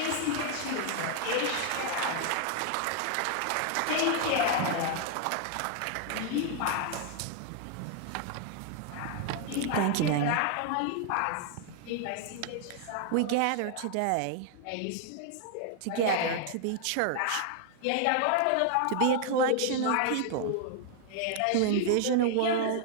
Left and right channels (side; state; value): both; different; correlation 0.00